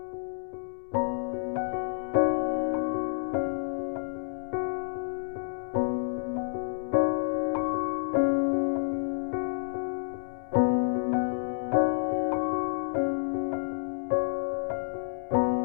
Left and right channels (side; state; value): right; silent; digital silence